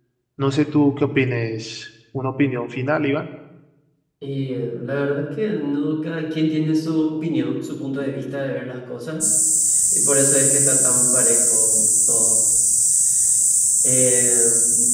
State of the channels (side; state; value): both; identical; correlation 1.00